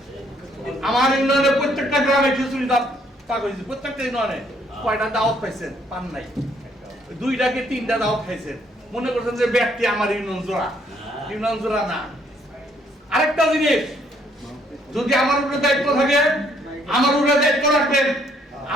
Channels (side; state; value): both; normal; correlation 0.67